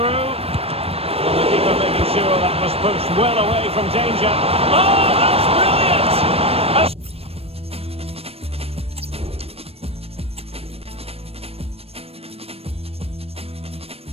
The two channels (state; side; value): late; left; 0.28 ms